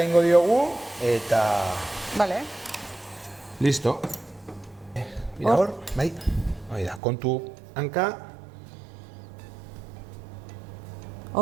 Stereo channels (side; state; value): left; drops out; at 7.0 s